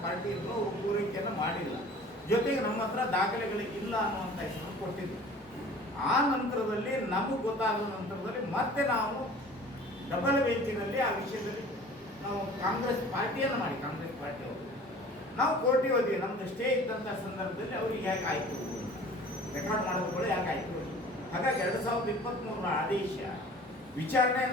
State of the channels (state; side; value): normal; both; correlation 0.46